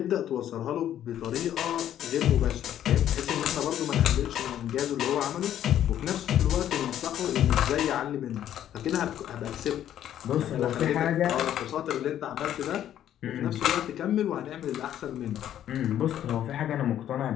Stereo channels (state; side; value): quieter; right; 11.1 dB